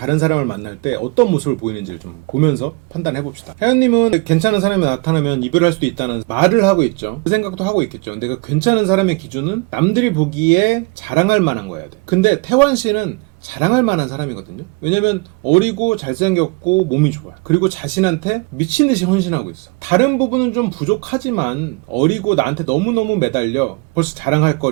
사람을 만날 때 어떤 모습을 보이는지를 좀 보면서 판단해 봅시다. 혜연님은 괜찮은 사람이 나타나면 이별할 수도 있다는 말을 하고 있죠. 그 생각도 하고 있겠죠. 근데 그 괜찮은 사람의 기준은 남들이 보기에 자랑할 만한 거여야 돼. 근데 태환 씨는 자랑할 만한 사람이거든요. 왜냐면 어리고 잘생겼고 몸이 좋아요. 그리고 자신한테 미친듯이 헌신하고 있어. 다른 부분은 좀 부족하지만 어리고 나한테 너무너무 매달려 벌써 자랑할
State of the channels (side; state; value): left; quieter; 27.3 dB